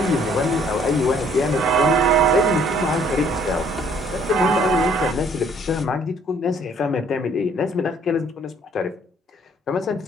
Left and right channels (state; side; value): normal; both; correlation 0.61